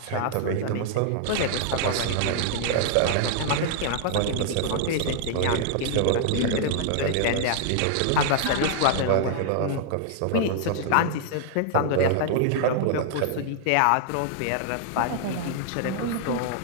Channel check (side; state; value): both; different; correlation -0.01